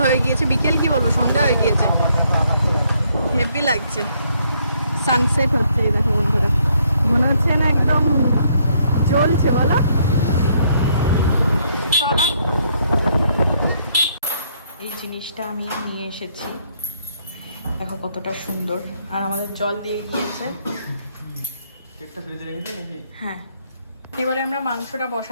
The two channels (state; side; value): inverted; both; correlation -0.69